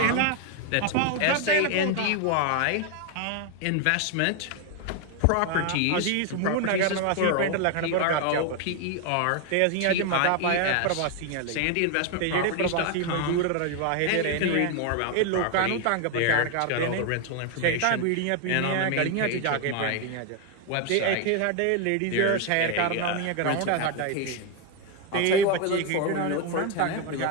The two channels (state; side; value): different; both; correlation 0.01